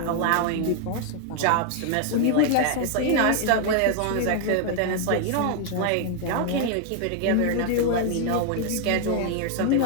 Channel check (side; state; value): both; different; correlation 0.00